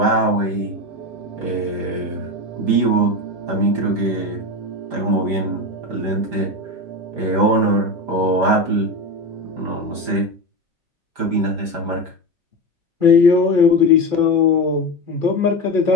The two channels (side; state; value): left; late; 5.0 ms